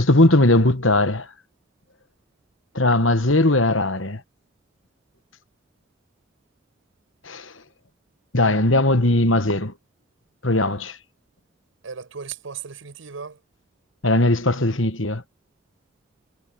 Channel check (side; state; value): both; normal; correlation 0.29